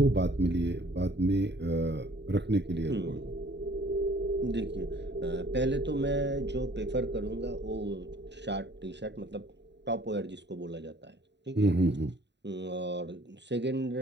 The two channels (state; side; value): late; left; 0.51 ms